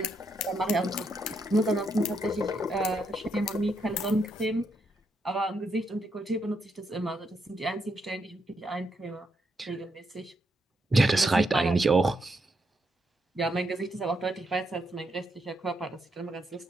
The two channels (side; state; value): both; normal; correlation 0.79